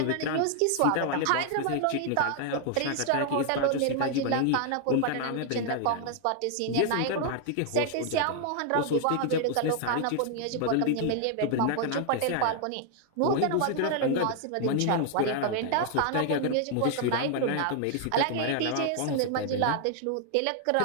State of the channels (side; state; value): both; different; correlation 0.00